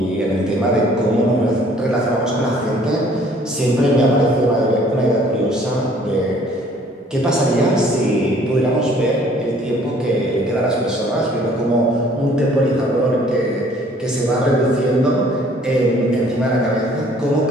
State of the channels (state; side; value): normal; both; correlation 0.57